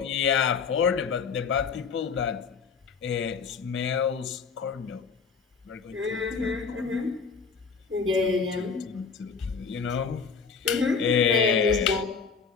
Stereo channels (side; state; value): right; quieter; 5.7 dB